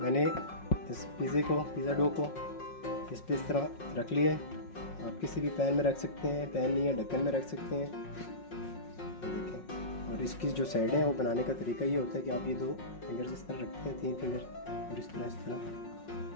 मैंने इस पिज़्ज़ा डो को इस पे इस तरह रख लिया है। आप किसी भी पैन में रख सकते हैं, पैन नहीं है ढक्कन में रख सकते हैं। ये देखें, और इसकी जो साइडें हैं वो बनाने का तरीका ये होता है कि आप ये 2 फिंगर इस तरह रखते हैं, 3 फिंगर, और इस तरह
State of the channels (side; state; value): right; late; 5.5 ms